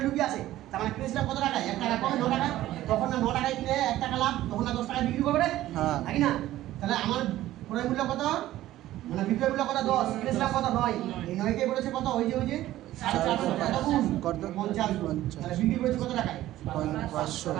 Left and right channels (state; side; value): quieter; left; 14.7 dB